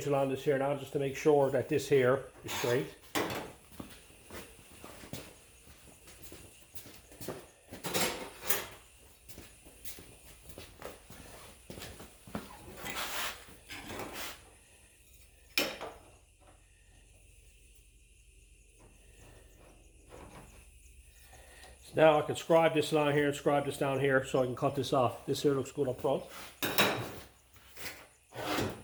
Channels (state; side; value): identical; both; correlation 1.00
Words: along this here now just to make sure that this here is straight. Now I can scribe this line here and scribe this down here so I can cut this off. This here looks good up front.